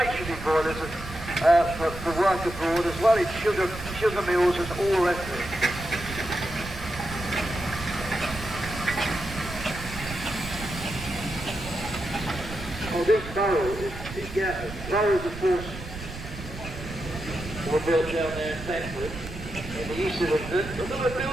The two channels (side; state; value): right; noise; rumble, 11 dB below the sound